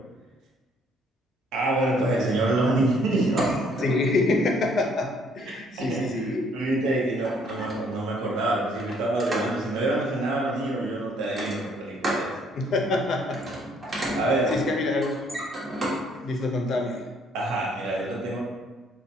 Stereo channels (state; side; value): normal; both; correlation 0.64